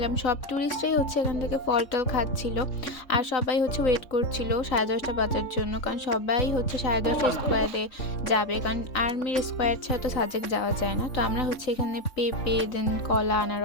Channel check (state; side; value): late; right; 3.6 ms